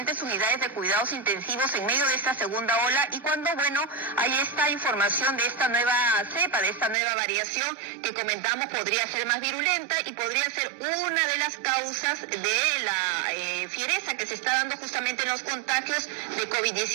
unidades de cuidados intensivos en medio de esta segunda ola y cuando, bueno, hay esta información de esta nueva cepa, de esta nueva variación que comentamos podría ser más virulenta y podría ser una de las causas de la fiereza que se está dando justamente en los contagios de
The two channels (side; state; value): left; drops out; at 7.0 s